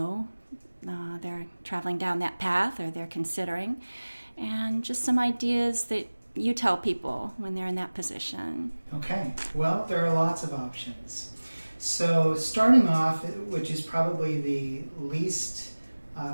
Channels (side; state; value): both; inverted; correlation -1.00